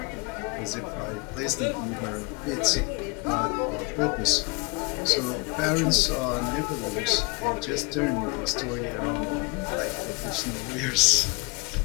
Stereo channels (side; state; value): right; quieter; 28.0 dB